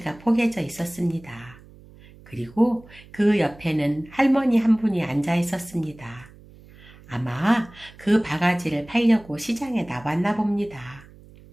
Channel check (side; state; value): right; noise; hum, 22 dB below the sound